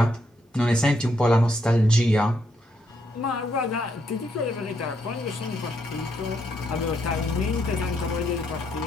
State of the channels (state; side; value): normal; both; correlation 0.76